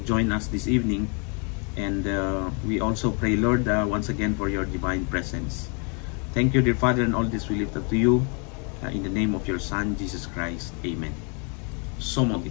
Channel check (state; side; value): quieter; right; 36.4 dB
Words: join us this evening. And we also pray, Lord, once again for your divine presence. Thank you, dear Father, and all this we lift up to you in the name of your Son, Jesus Christ. Amen. So mag